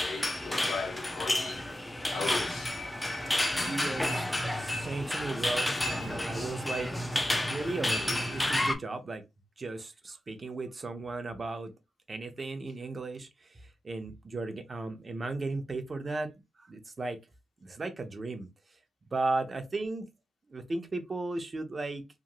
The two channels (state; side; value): normal; both; correlation 0.91